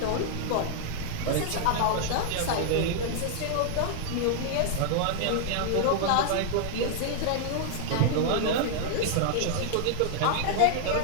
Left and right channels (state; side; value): different; both; correlation 0.00